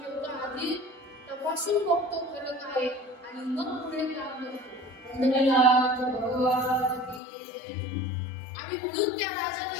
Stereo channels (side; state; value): right; drops out; at 7.2 s